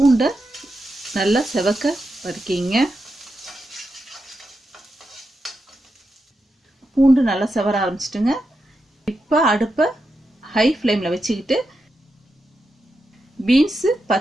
நல்லா செவக்க வதக்கிங்க. பூண்டு நல்லா செவர ஆரம்பிச்சிட்டுங்க. இப்போ அடுப்பை ஹை ஃப்ளேமில் வச்சுக்கிட்டு பீன்ஸு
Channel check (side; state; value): both; normal; correlation 0.87